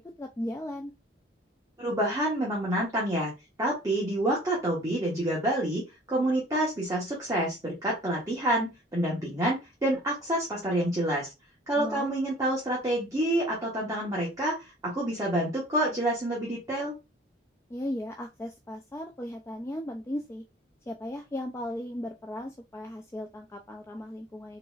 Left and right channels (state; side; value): normal; both; correlation 0.50